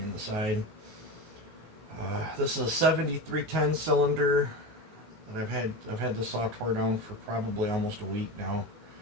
the side. This is a 7310 cylinder that I've had this saw tore down for probably almost a week now,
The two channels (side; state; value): left; late; 19 ms